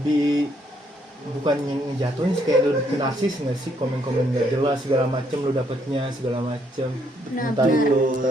bukan yang jatuhin sih, kayak lu narsis nggak sih, komen-komen nggak jelas segala macem lu dapetnya segala macem. Nah, Entah benar. itu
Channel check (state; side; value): normal; both; correlation 0.71